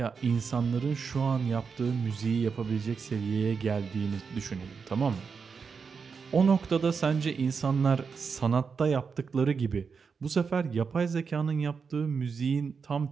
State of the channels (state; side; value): quieter; left; 5.6 dB